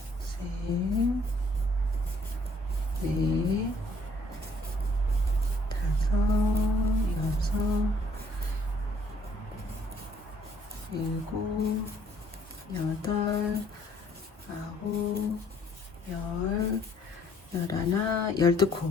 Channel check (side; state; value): both; normal; correlation 0.63